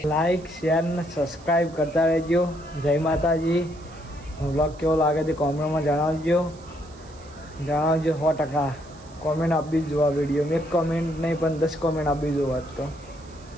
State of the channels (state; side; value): noise; right; hiss, 25 dB below the sound